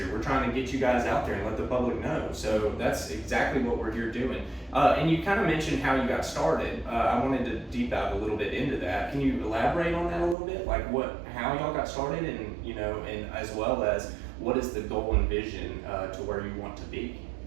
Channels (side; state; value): left; drops out; at 10.4 s